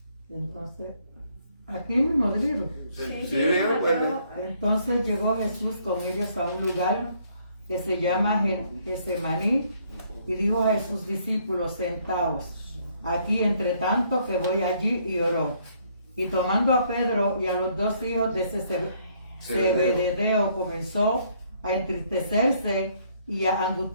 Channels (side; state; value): both; inverted; correlation -0.67